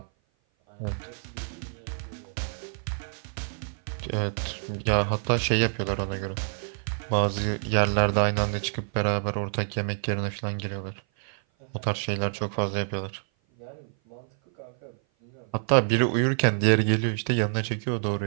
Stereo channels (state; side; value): silent; left; 56 dB below the other